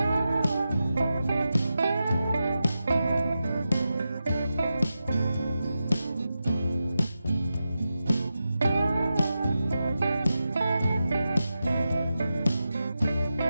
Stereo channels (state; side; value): inverted; both; correlation -0.90